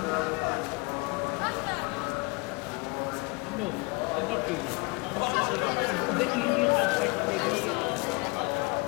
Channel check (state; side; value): quieter; right; 27.4 dB